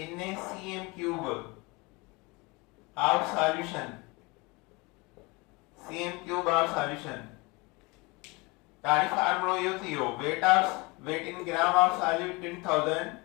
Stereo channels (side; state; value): right; quieter; 26.0 dB